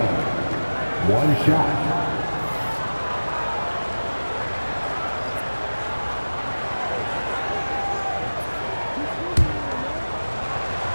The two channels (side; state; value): both; inverted; correlation -1.00